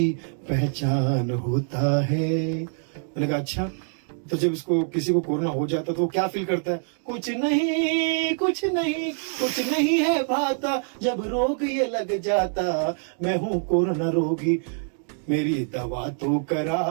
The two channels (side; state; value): left; silent; 58 dB below the other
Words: पहचान होता है। मैंने कहा अच्छा, तो जब इसको किसी को कोरोना हो जाता तो वो क्या फील करता है। कुछ नहीं है भाता, जब रोग ये लग जाता, मैं हूँ कोरोना रोगी, मेरी दवा तो